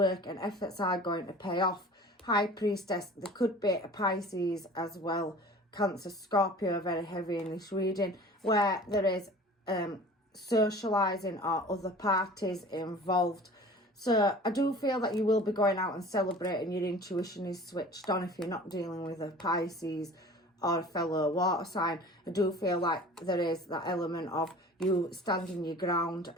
and efforts are going to pay off. High Priestess, there could be a Pisces as well. Cancer, Scorpio, very heavy in this reading, where there is socialising or other parties involved. So I do feel that you will be going out and celebrating. Your intuition is switched on if you're not dealing with a Pisces or a fellow water sign. I do feel like there is that element of you standing your ground.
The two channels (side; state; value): both; normal; correlation 0.43